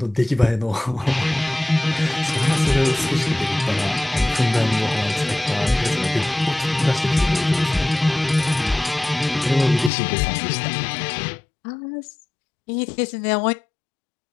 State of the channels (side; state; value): right; drops out; at 9.9 s